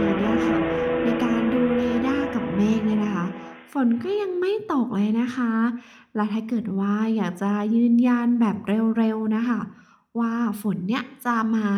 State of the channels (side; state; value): both; identical; correlation 1.00